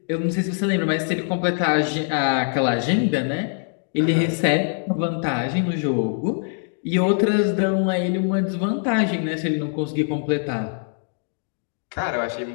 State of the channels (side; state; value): right; silent; 63 dB below the other